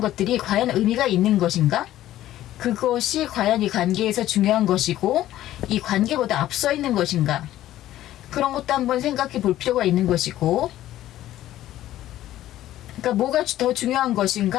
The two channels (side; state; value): right; quieter; 13.7 dB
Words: 것들이 과연 의미가 있는 것인가? 그것이 과연 이 관계에서 중요한 것이고 이 관계보다 앞서 있는 것인가? 그런 것도 한번 생각해 볼 필요가 있는 것이고, 그러니까 뭐가 더 중요한